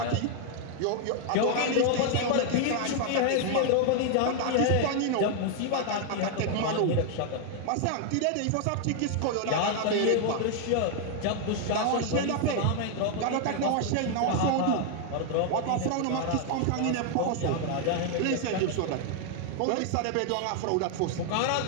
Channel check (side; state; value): both; different; correlation 0.00